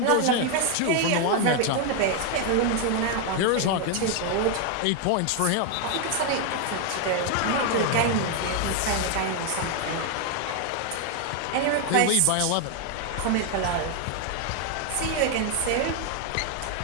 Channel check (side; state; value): both; different; correlation 0.01